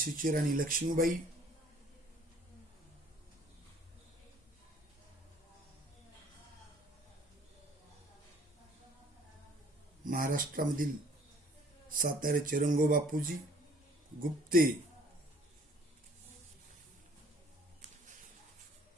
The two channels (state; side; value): normal; both; correlation 0.57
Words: राणी लक्ष्मीबाई, महाराष्ट्रामधील साताऱ्याचे रंगोबापूजी, गुप्ते,